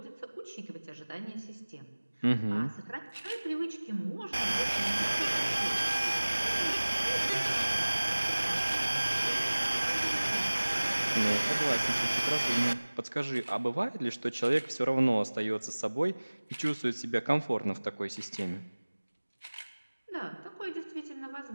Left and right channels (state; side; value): inverted; both; correlation -1.00